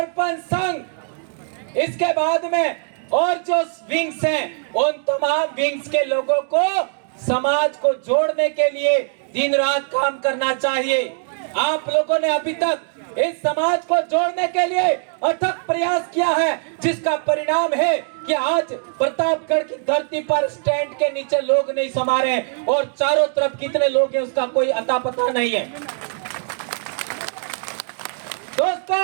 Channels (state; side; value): silent; left; digital silence